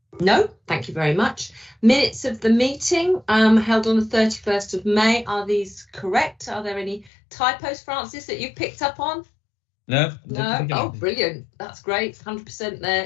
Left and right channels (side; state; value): right; drops out; at 7.1 s